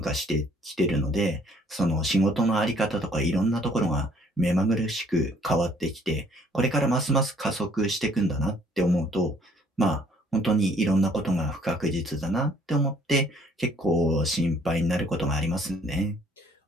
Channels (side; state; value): both; normal; correlation 0.61